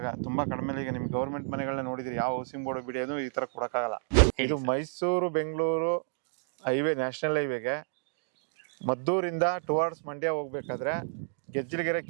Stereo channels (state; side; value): silent; left; digital silence